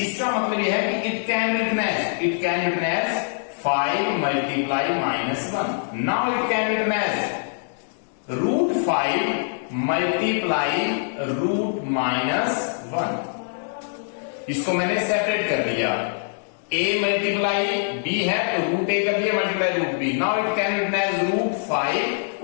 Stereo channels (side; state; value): right; silent; digital silence